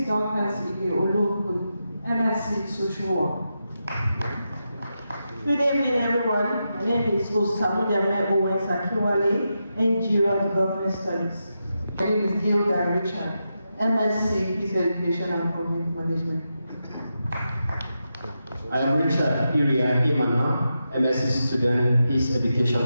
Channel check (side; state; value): both; inverted; correlation -0.88